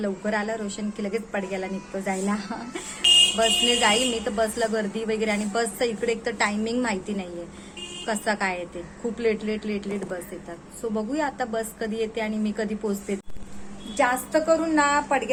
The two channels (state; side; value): identical; both; correlation 1.00